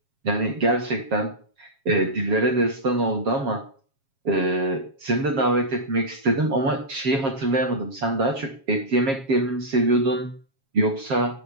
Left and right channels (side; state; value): left; late; 7.4 ms